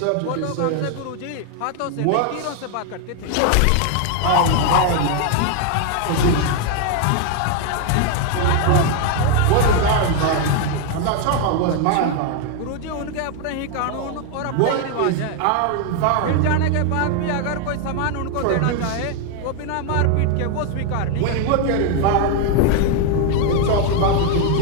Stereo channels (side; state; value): both; different; correlation 0.01